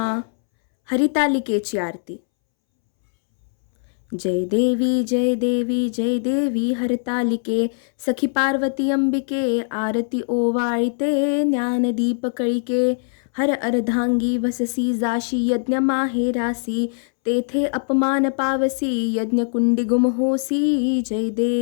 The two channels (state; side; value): silent; right; 65 dB below the other